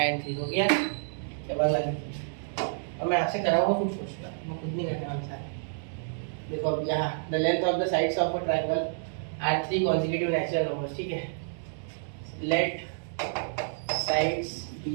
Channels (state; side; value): silent; left; digital silence